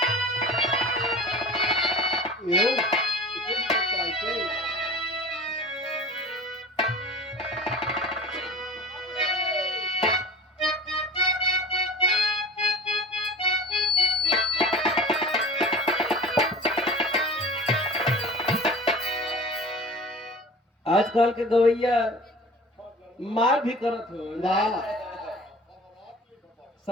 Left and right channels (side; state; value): both; normal; correlation 0.39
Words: आजकल के गवैया मार भी करत हो,